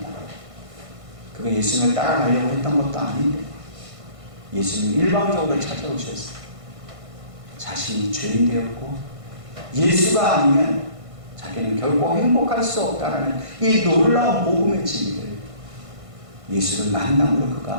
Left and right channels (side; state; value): left; late; 1.5 ms